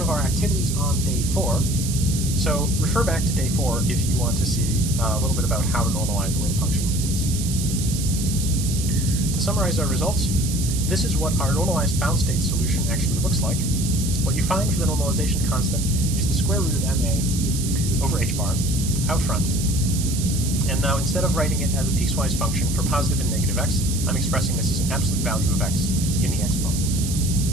of our activities on day 4, so refer back to day 4 if you want to see a little bit about how to normalize a wave function like this. To summarize our results, this is what our normalized bound state solution actually looks like. What you find for the normalization constant is the square root of ma over h bar out front. And now instead of writing it as a piecewise function for positive and negative x, I'm expressing this as an absolute value of x in the exponent.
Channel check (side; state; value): right; noise; hiss, 7 dB below the sound